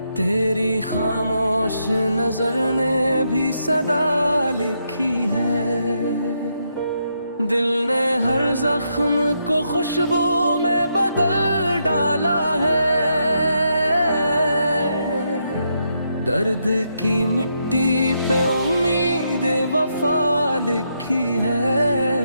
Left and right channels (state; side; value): inverted; both; correlation -0.80